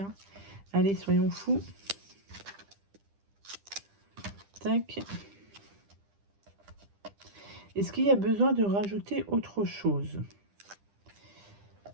Allez, soyons fous. Tac. Est-ce qu'il y a besoin de rajouter autre chose?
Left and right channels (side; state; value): left; late; 10 ms